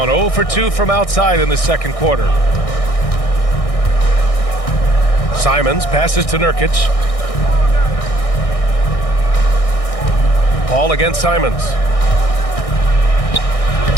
0 for 2 from outside in the second quarter. Simons passes to Nurkic. Paul against Simons.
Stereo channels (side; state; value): right; late; 1.6 ms